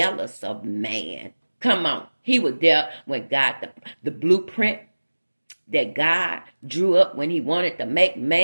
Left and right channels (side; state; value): both; inverted; correlation -1.00